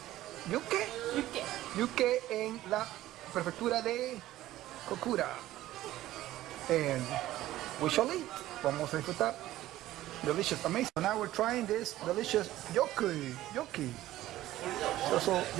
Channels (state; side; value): quieter; left; 15.0 dB